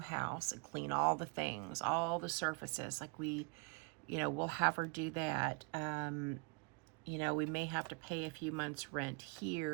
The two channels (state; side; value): quieter; left; 33.1 dB